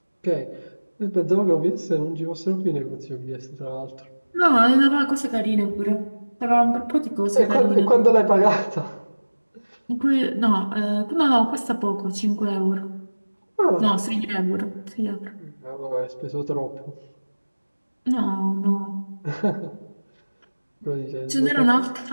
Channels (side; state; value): both; inverted; correlation -1.00